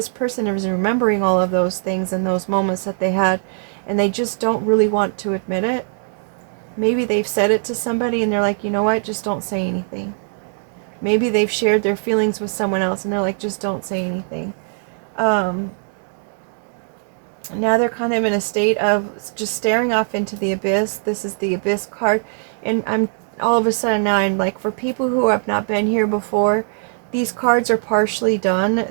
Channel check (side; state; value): left; silent; digital silence